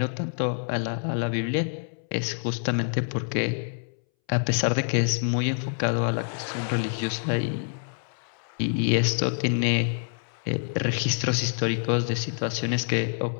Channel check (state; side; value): silent; right; 60 dB below the other